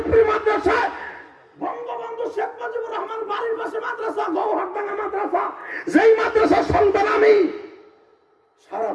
মাদ্রাসায়, বঙ্গবন্ধু শেখ মুজিবুর রহমান বাড়ির পাশে মাদ্রাসা, গৌহারডাঙ্গা মাদ্রাসা, যেই মাদ্রাসার সন্তান আমি।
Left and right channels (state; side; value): identical; both; correlation 1.00